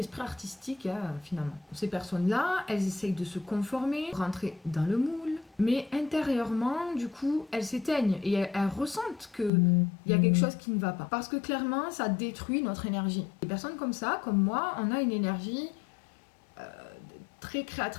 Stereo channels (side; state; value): right; drops out; at 9.5 s